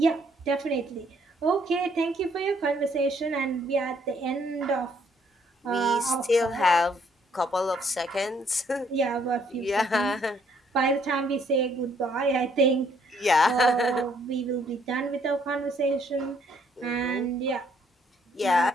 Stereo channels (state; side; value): normal; both; correlation 0.67